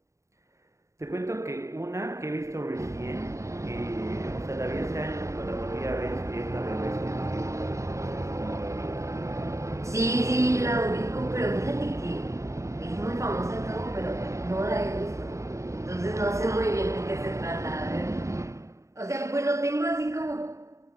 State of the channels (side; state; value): left; late; 0.14 ms